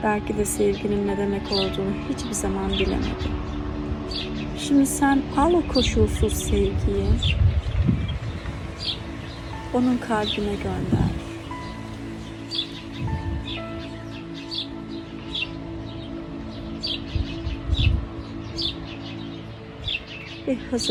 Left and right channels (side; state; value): both; identical; correlation 1.00